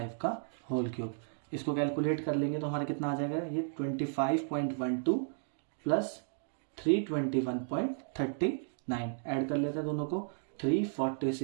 का होल क्यूब। इसको कैलकुलेट कर लेंगे तो हमारा कितना आ जाएगा ये 25.12 प्लस 321.39, ऐड कर लेते हैं दोनों को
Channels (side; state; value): left; silent; digital silence